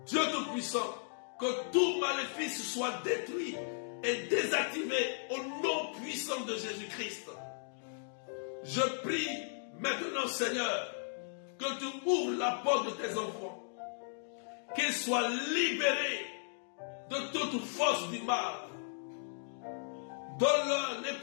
Dieu Tout-Puissant, que tout maléfice soit détruit et désactivé au nom puissant de Jésus-Christ. Je prie Maintenant, Seigneur, que tu ouvres la porte de tes enfants, qu'ils soient libérés de toute force du mal. Donne-leur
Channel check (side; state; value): right; silent; digital silence